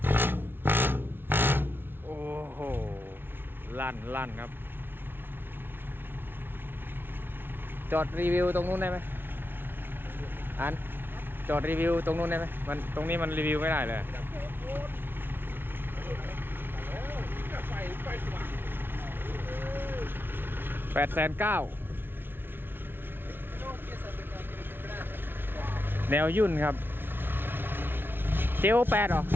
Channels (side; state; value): left; late; 0.10 ms